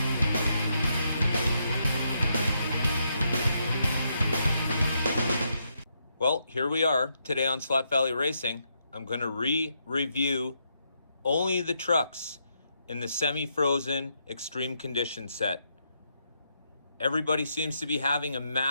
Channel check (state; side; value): inverted; both; correlation -0.79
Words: Well, here we are today on Slot Valley Racing. I'm going to review only the trucks in the semi-frozen extreme condition set. Everybody seems to be having a